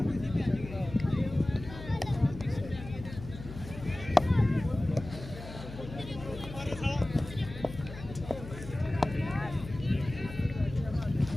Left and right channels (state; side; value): noise; left; hum, 12 dB below the sound